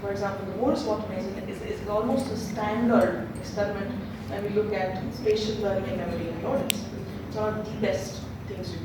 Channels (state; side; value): identical; both; correlation 1.00